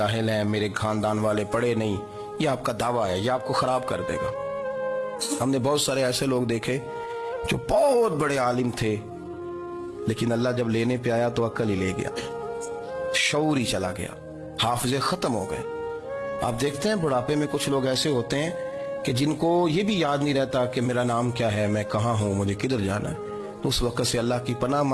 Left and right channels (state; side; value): identical; both; correlation 1.00